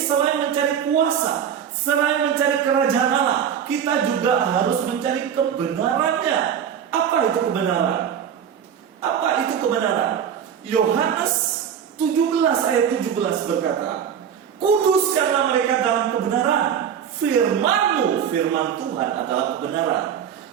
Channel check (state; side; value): quieter; left; 8.4 dB